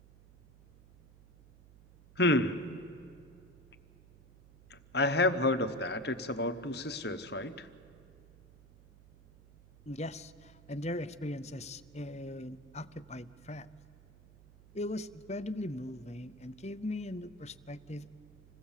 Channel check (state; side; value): noise; right; hum, 22 dB below the sound